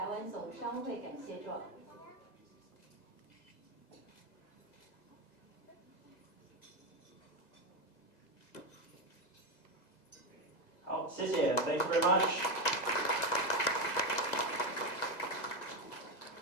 湾总商会感谢状。好，谢谢 ，Thank you very much.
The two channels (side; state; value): right; late; 2.0 ms